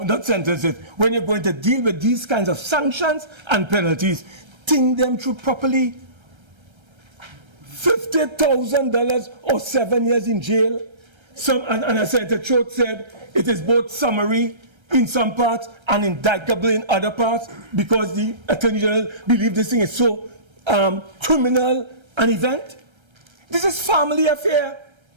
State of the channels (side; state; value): left; late; 1.3 ms